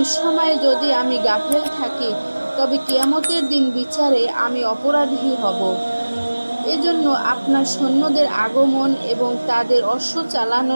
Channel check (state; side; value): inverted; both; correlation -1.00